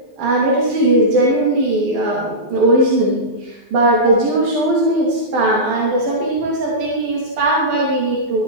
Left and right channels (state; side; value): late; left; 12 ms